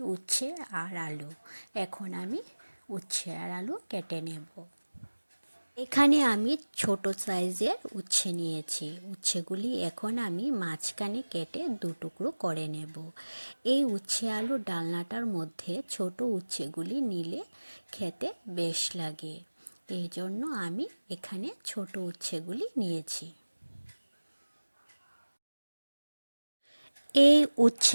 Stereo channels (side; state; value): both; inverted; correlation -1.00